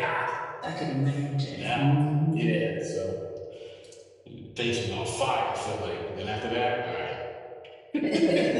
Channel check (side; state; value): both; identical; correlation 1.00